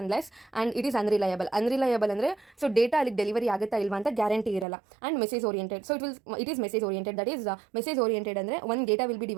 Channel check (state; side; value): drops out; left; at 4.7 s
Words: and it is unreliable. Unreliable ಅಂದರೆ ಸೊ ಡೇಟಾ ಅಲ್ಲಿಗೆ ಡೆಲಿವರಿ ಆಗುತ್ತಾ ಇಲ್ವಾ ಅಂತ ಗ್ಯಾರಂಟಿ ಇರಲ್ಲ. And message oriented. So it is message oriented. That is message oriented ಅಂದರೆ ಒಂದು data will be